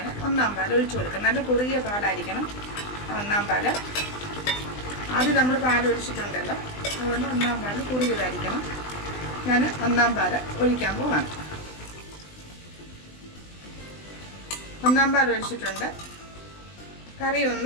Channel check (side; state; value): right; late; 20 ms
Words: 1-ാം പാൽ ഒഴിച്ചു കൊടുക്കാം. നല്ല കുറുകിയ പാലായിരിക്കണം 1-ാം പാല്. ആദ്യം നമ്മൾ പാൽ ഒഴിച്ചിട്ടുണ്ടല്ലോ, അതുകൊണ്ട് 1-ാം പാൽ കുറുകിയതായിരിക്കണം. ഞാൻ 1-ാം പാൽ ഒഴിക്കാൻ പോവാണ്. 1-ാം പാൽ ഒഴിച്ചിട്ടുണ്ട്. കറി